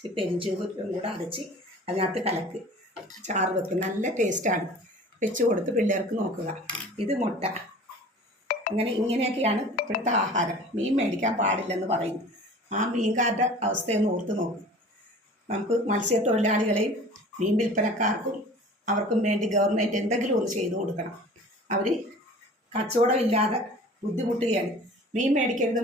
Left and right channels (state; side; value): normal; both; correlation 0.43